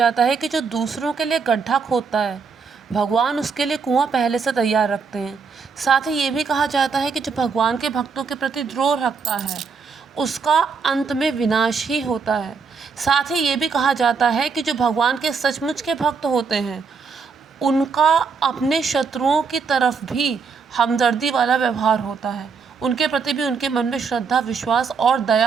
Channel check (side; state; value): left; quieter; 5.3 dB